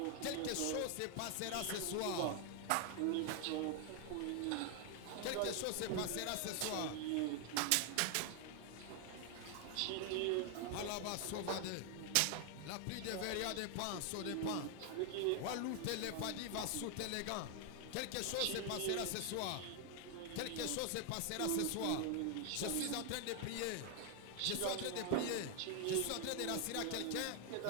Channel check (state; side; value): different; both; correlation 0.00